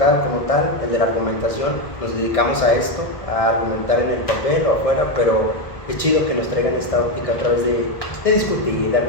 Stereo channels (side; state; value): right; late; 1.6 ms